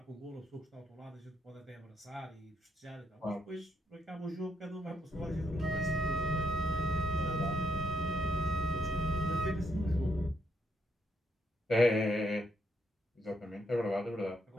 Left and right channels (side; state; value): both; normal; correlation 0.77